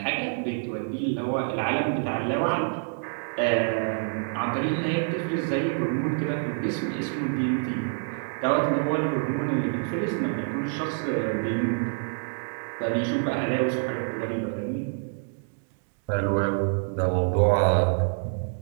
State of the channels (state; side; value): silent; left; 60 dB below the other